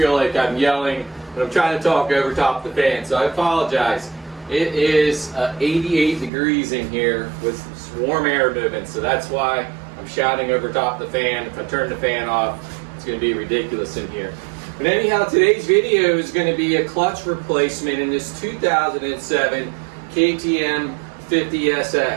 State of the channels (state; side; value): drops out; left; at 6.3 s